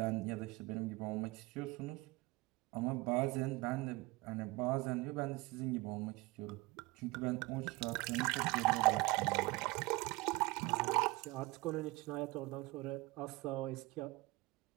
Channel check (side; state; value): left; quieter; 21.9 dB